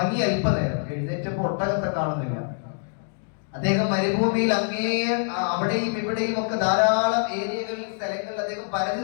അല്പനേരം, എഴുന്നേറ്റപ്പോൾ ഒട്ടകത്തെ കാണുന്നില്ല. അദ്ദേഹം മരുഭൂമിയിൽ അവിടെയും ഇവിടെയും ഒക്കെ ധാരാളം ഏരിയകളിൽ സ്ഥലങ്ങളിൽ അദ്ദേഹം പരതി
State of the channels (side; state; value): right; silent; 61 dB below the other